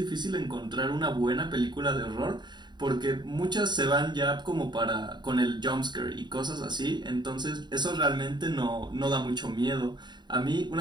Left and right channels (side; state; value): left; late; 0.21 ms